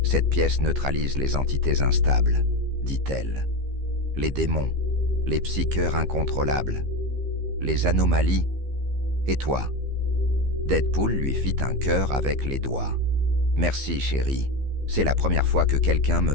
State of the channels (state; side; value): late; left; 15 ms